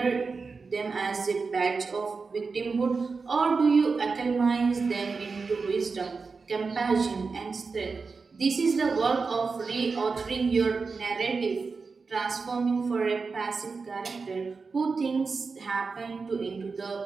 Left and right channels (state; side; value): quieter; left; 4.6 dB